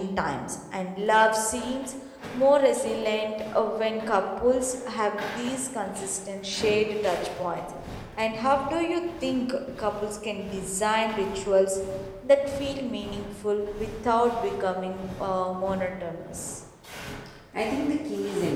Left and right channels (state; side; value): identical; both; correlation 1.00